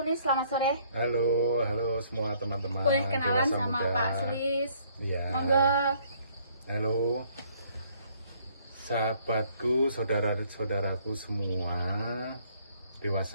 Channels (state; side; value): inverted; both; correlation -0.63